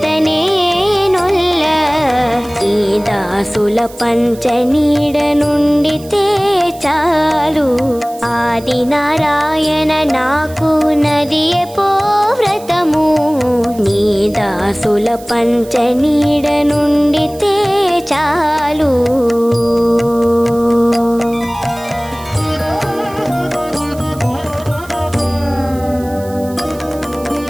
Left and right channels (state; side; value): noise; right; hiss, 21 dB below the sound